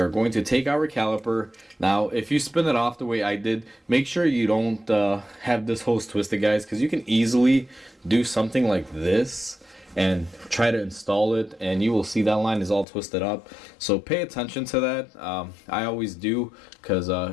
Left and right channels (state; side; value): drops out; right; at 12.9 s